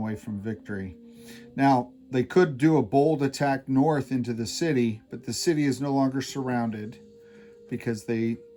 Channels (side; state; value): both; identical; correlation 1.00